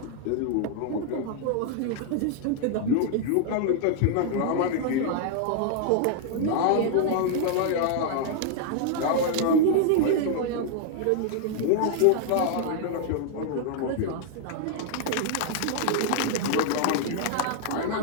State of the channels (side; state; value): both; different; correlation 0.00